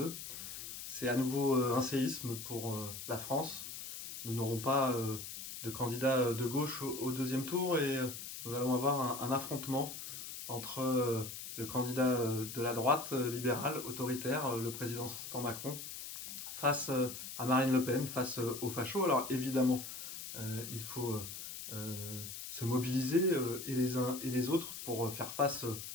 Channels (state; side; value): noise; left; hiss, 9 dB below the sound